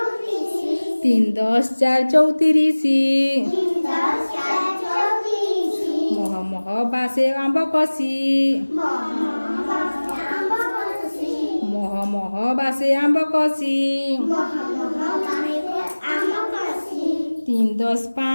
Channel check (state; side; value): inverted; both; correlation -1.00